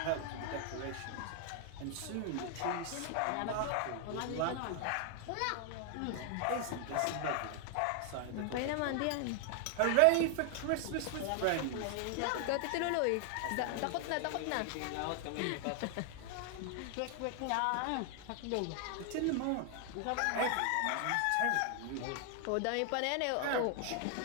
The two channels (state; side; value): different; both; correlation 0.00